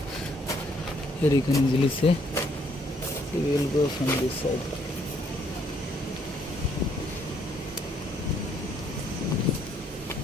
here you can easily see. So we will go from this side.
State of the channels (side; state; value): both; normal; correlation 0.68